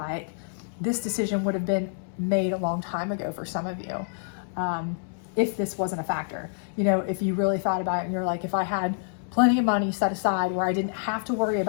this decision would have been made a long time ago for some of you, if this wasn't a factor. If you really thought about it and you're like, if I had plenty of money set aside where I didn't have to worry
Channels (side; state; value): right; silent; digital silence